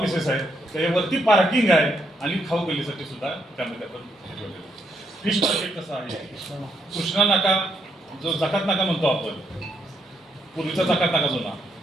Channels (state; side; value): normal; both; correlation 0.76